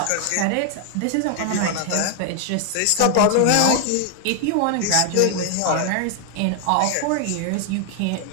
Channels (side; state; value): both; different; correlation 0.00